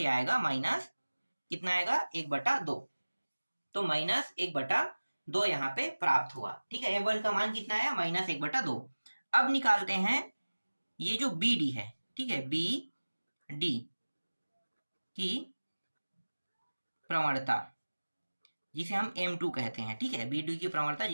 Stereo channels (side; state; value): both; inverted; correlation -1.00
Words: आएगा माइनस, कितना आएगा 1/2, तो -1/2 यहाँ पे प्राप्त हुआ, ठीक है। M1 का मान कितना आया, -1/2। अब निकालते हैं ये जो BD है, ठीक है, BD की प्रवणता, जिसे हम M2 कहते हैं, ठीक है, BD की प्रवणता